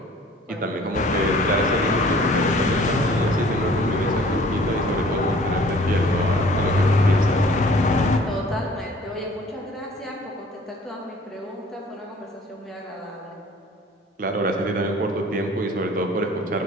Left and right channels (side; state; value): both; normal; correlation 0.52